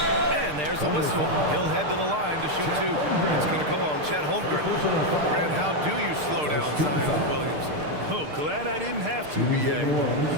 And there's a whistle. He'll head to the line to shoot 2. It's going to go on Chet Holmgren. Grant, how do you slow down Zion Williamson? Oh, glad I didn't have to, B.A.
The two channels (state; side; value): late; left; 6.6 ms